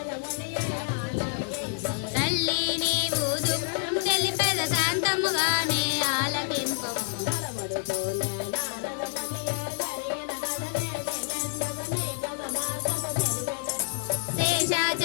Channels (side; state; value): right; silent; 59 dB below the other